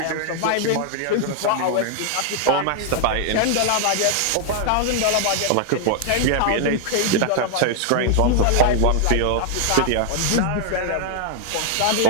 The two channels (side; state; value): both; different; correlation 0.00